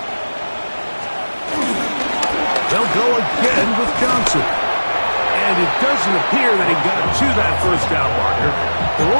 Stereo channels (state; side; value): inverted; both; correlation -1.00